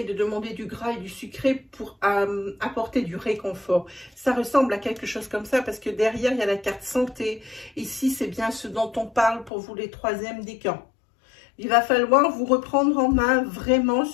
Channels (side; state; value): right; drops out; at 9.5 s